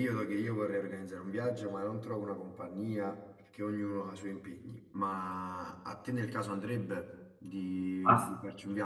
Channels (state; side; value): identical; both; correlation 1.00